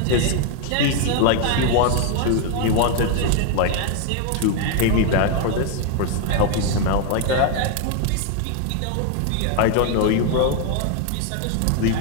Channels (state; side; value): different; both; correlation 0.00